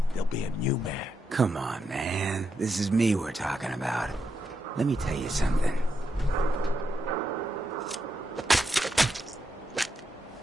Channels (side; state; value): both; normal; correlation 0.83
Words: there'll be a new mayor. Come on, man. This is me we're talking about. Let me tell you something.